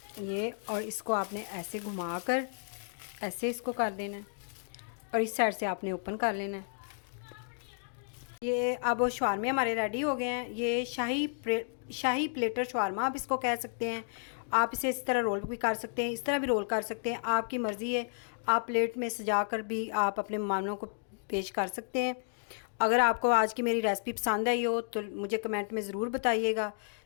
ये, और इसको आपने ऐसे घुमा कर ऐसे इसको कर देना है और इस साइड से आपने ओपन कर लेना है। ये अब शवारमे हमारे रेडी हो गए हैं। ये शाही प्लेटर शवारमा आप इसको कह सकते हैं। आप इसे इस तरह रोल भी कर सकते हैं, इस तरह भी रोल कर सकते हैं, आपकी मर्ज़ी है। आप प्लेट में सजा कर भी आप अपने मेहमानों को पेश कर सकते हैं। अगर आपको आज की मेरी रेसिपी पसंद आई हो तो मुझे कमेंट में ज़रूर बताइएगा।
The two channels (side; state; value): right; silent; digital silence